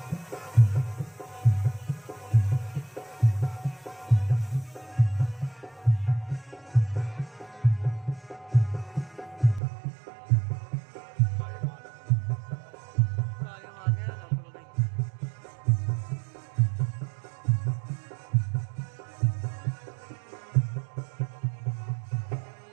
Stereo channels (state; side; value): drops out; left; at 9.6 s